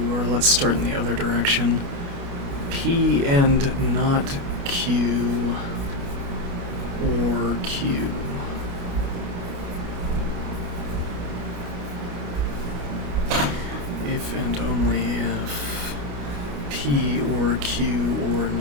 or let's start in the other direction, P and not Q, or Q. If and only if P or Q or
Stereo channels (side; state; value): left; late; 29 ms